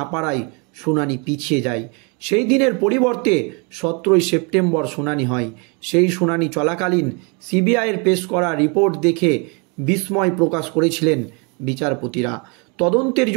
পারায় শুনানি পিছিয়ে যায়। সেই দিনের পরিবর্তে 17ই সেপ্টেম্বর শুনানি হয়। সেই শুনানি চলাকালীন সিবিআইয়ের পেশ করা রিপোর্ট দেখে বিস্ময় প্রকাশ করেছিলেন বিচারপতিরা। তদন্তের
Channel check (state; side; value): quieter; left; 33.0 dB